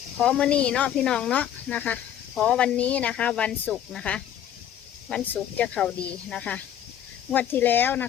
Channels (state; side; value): quieter; right; 10.3 dB